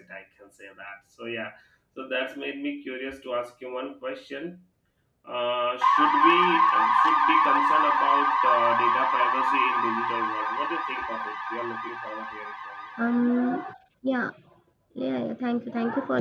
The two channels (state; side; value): identical; both; correlation 1.00